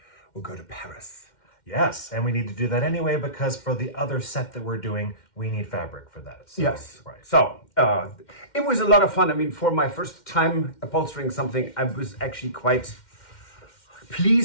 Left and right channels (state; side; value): late; right; 2.1 ms